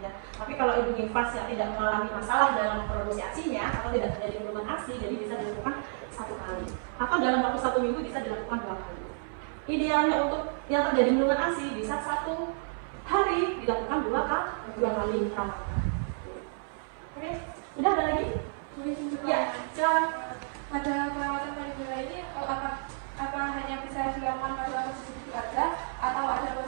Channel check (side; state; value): left; silent; 56 dB below the other